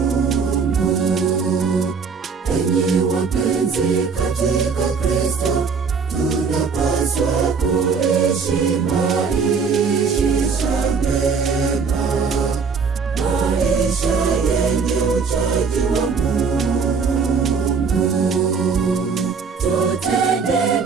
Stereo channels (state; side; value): quieter; left; 5.4 dB